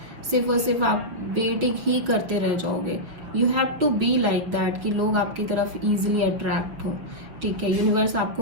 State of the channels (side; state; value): left; late; 6.2 ms